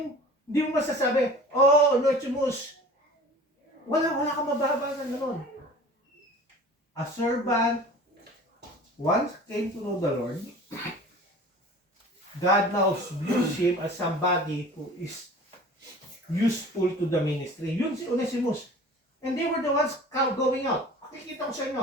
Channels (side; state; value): both; normal; correlation 0.43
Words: hindi mo masasabi, oh, Onesimus, wala kang mababa na naman. A servant once came to know the Lord. God now views him as somebody who is useful to the ministry. Yun si Onesimus. And they were the ones going out. Pakikita ko sa